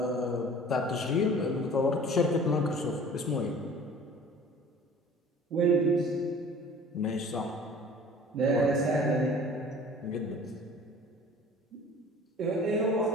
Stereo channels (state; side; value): normal; both; correlation 0.46